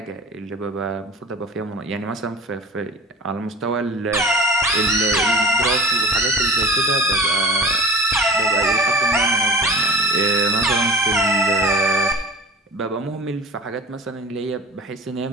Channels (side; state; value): both; normal; correlation 0.37